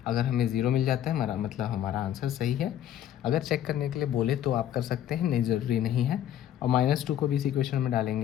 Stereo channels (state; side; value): quieter; right; 11.1 dB